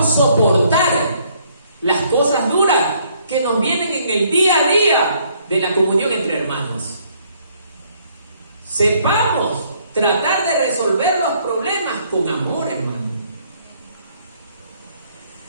soportar las cosas duras que nos vienen en el día a día de la comunión entre hermanos. Sepamos tratar de resolver los problemas con amor, hermano.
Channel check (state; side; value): inverted; both; correlation -0.66